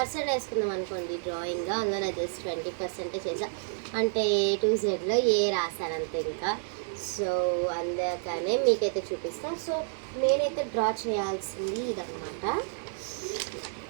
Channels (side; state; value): left; silent; digital silence